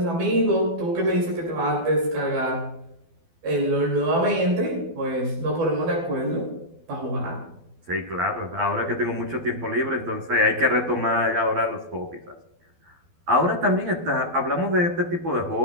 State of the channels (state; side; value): late; left; 12 ms